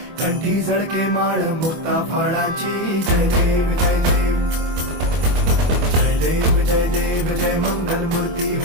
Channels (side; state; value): left; late; 24 ms